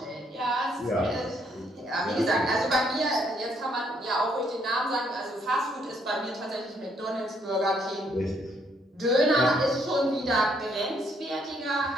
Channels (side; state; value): both; normal; correlation 0.70